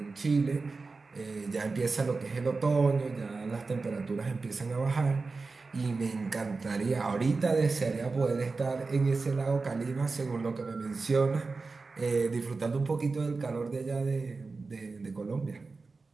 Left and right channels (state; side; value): quieter; left; 4.0 dB